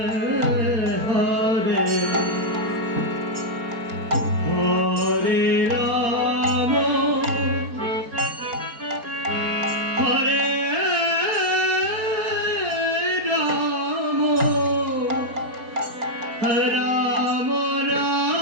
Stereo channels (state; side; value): late; left; 4.3 ms